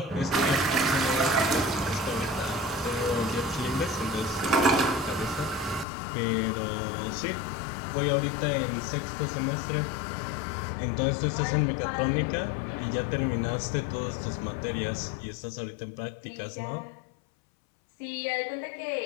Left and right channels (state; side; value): drops out; right; at 5.9 s